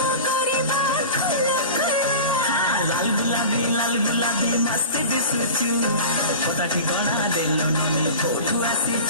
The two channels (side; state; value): both; inverted; correlation -0.35